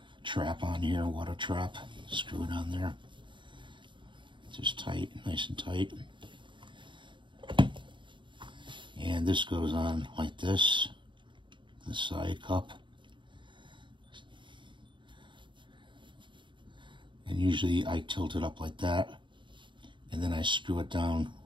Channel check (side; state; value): left; late; 0.23 ms